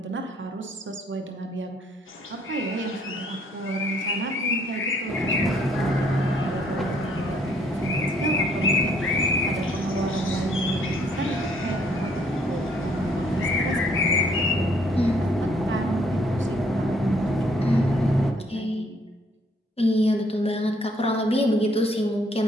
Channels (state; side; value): normal; both; correlation 0.65